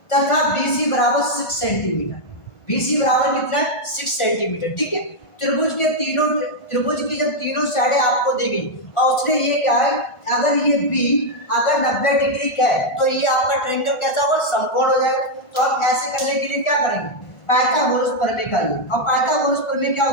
तथा बी सी बराबर 6 सेंटीमीटर, बी सी बराबर कितना है 6 सेंटीमीटर, ठीक है। त्रिभुज की जब तीनों साइडें आपको दी गई और उसने ये क्या है, अगर ये बी अगर 90 डिग्री का है तो ये आपका ट्रायंगल कैसा होगा समकोण हो जाएगा। तो आप ऐसे करने के लिए क्या करेंगे, पाइथागोरस प्रमेय का यूज। और पाइथागोरस प्रमेय क्या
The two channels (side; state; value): right; late; 1.5 ms